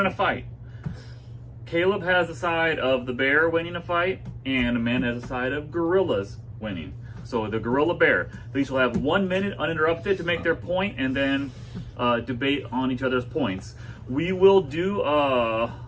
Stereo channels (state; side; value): identical; both; correlation 1.00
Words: a fight? Caleb has the side of the bear winning a fight, and Amanda has the side of gorillas winning. So the gorilla bear. They each will have 1 minute uninterrupted to make their point and then debate on each other's points. We will do